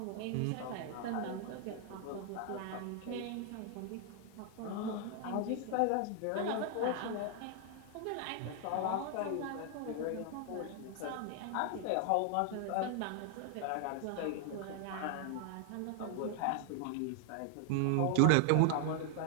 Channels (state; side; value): different; both; correlation 0.00